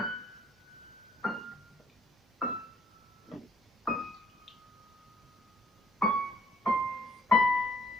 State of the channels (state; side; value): normal; both; correlation 0.64